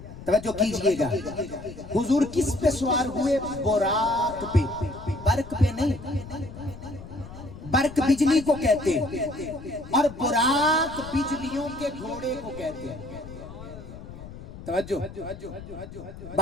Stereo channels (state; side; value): noise; left; rumble, 14 dB below the sound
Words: توجہ کیجئے گا، حضور کس پہ سوار ہوئے؟ براق پہ، برق پہ نہیں۔ برق بجلی کو کہتے ہیں اور براق بجلیوں کے گھوڑے کو کہتے ہیں۔ توجہ،